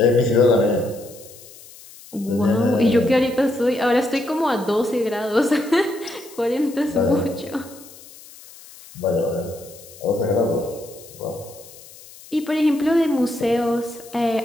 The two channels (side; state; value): left; noise; hiss, 20 dB below the sound